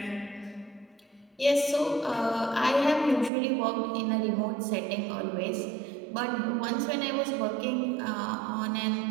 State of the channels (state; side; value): drops out; left; at 3.3 s